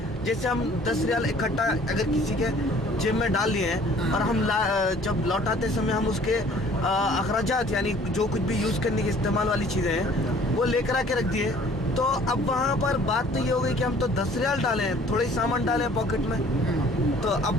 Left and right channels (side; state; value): both; normal; correlation 0.54